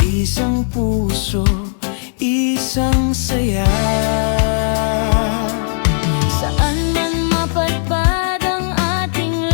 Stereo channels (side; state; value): right; silent; digital silence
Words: isang puso, isang saya. Saan man mapadpad ang ating